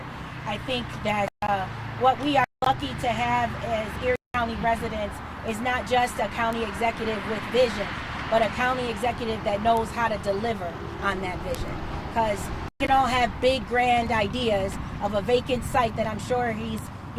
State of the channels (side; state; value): both; identical; correlation 1.00